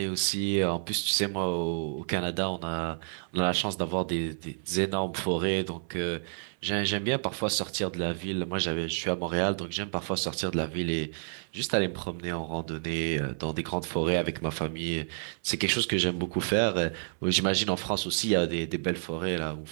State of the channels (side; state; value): left; silent; 58 dB below the other